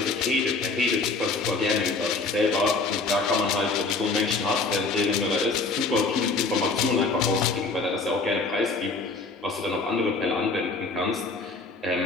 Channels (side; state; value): right; quieter; 3.8 dB